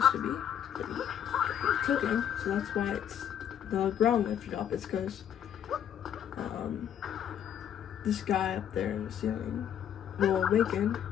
to be. But he took him, so that's why it's the ground lifted up. It's because this guy up there in the ceiling will awaken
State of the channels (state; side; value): quieter; right; 9.5 dB